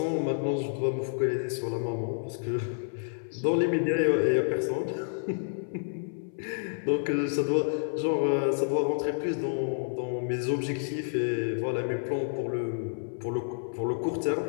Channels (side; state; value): right; silent; 58 dB below the other